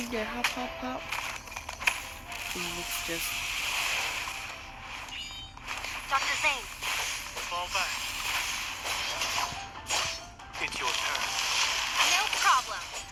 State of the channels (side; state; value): both; identical; correlation 1.00